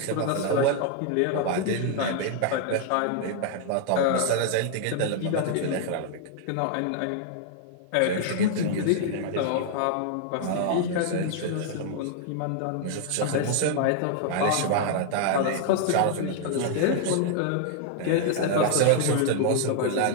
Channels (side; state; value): both; different; correlation 0.00